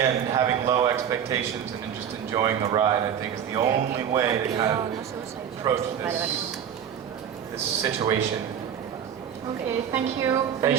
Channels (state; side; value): quieter; left; 8.8 dB